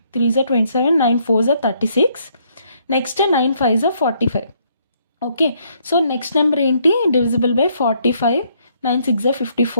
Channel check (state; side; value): inverted; both; correlation -0.69